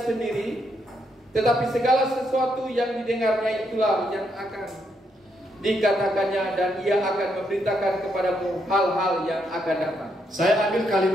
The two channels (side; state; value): both; normal; correlation 0.78